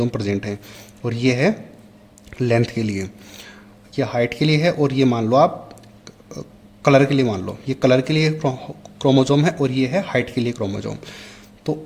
प्रेजेंट हैं, और ये है लेंथ के लिए। ये हाइट के लिए है, और ये मान लो आप कलर के लिए मान लो, ये कलर के लिए क्रोमोसोम है और ये है हाइट के लिए क्रोमोसोम। तो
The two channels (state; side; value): identical; both; correlation 1.00